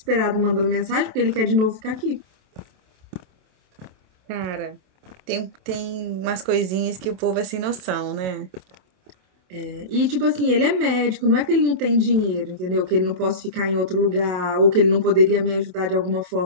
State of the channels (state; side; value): late; left; 27 ms